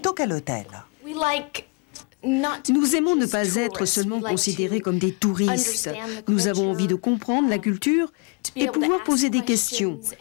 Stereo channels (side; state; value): right; quieter; 33.5 dB